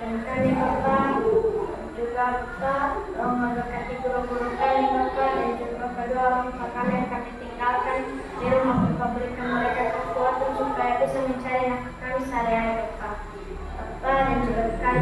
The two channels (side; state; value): both; identical; correlation 1.00